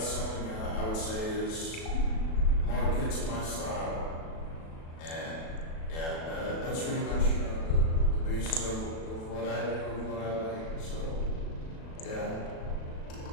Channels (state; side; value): late; right; 37 ms